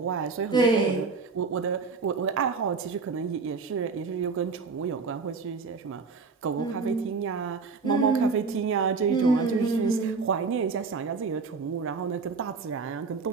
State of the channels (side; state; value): left; quieter; 4.6 dB